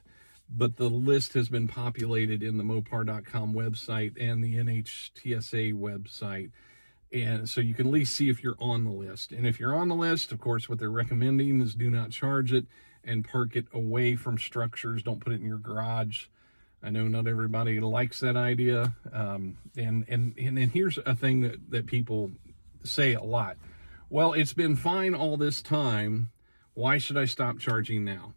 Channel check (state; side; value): inverted; both; correlation -1.00